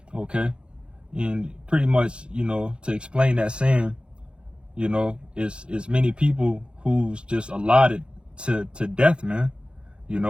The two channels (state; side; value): late; left; 0.055 ms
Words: Okay, and pretty much to explain that saying, it's many people who's just allotted to death, man.